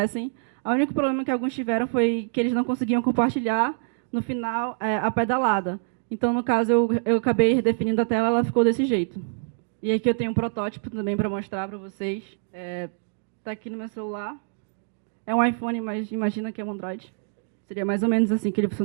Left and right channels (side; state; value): left; silent; digital silence